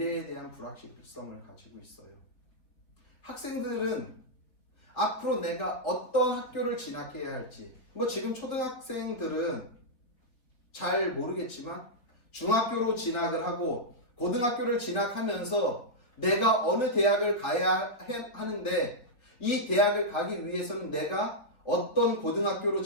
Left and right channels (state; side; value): late; right; 4.1 ms